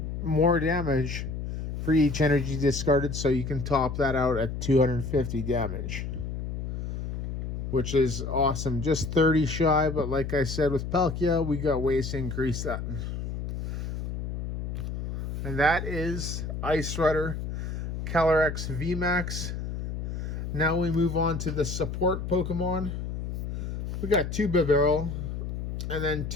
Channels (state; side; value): noise; left; hum, 5 dB below the sound